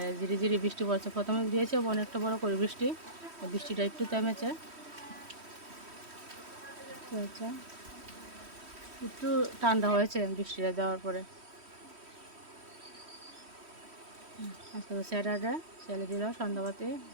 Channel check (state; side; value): late; left; 3.1 ms